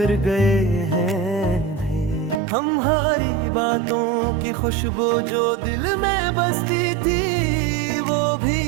गए हैं। हमारी बातों की खुशबू जो दिल में बसती थी, वो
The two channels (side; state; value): left; drops out; at 2.4 s